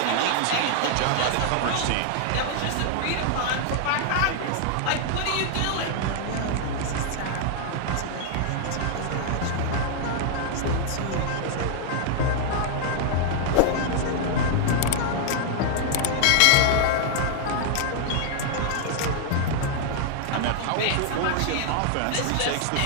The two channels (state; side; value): different; both; correlation -0.01